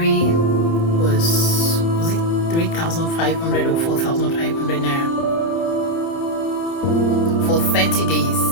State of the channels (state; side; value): late; right; 30 ms